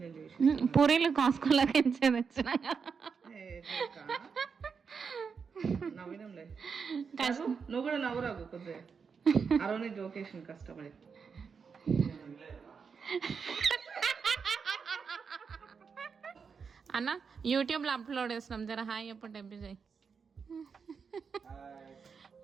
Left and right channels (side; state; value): left; quieter; 5.8 dB